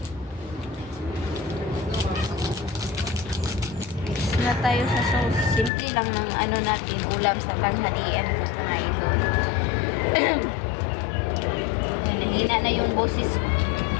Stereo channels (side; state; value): right; drops out; at 5.7 s